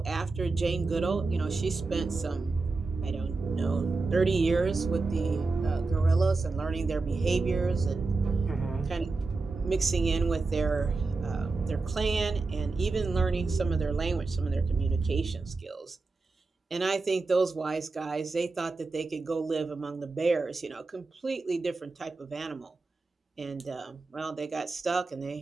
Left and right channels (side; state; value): left; quieter; 3.8 dB